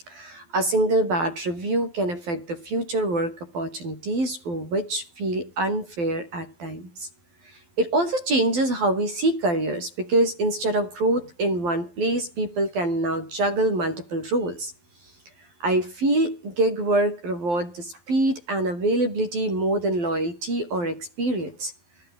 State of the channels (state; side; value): late; left; 12 ms